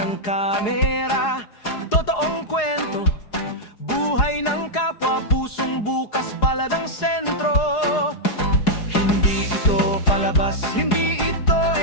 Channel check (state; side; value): late; right; 4.8 ms